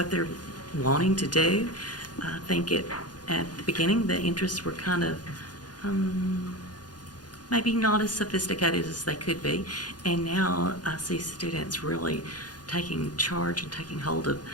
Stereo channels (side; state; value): right; late; 0.69 ms